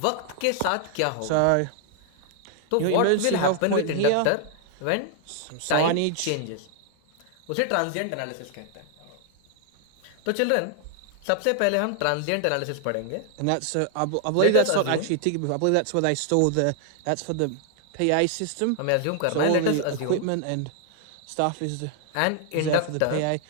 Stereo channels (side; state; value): both; different; correlation 0.00